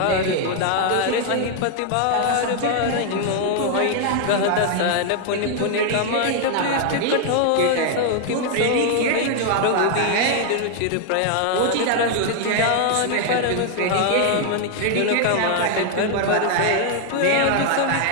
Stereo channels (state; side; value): different; both; correlation 0.00